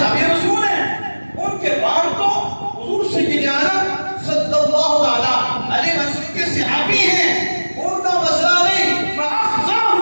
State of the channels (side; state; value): both; inverted; correlation -1.00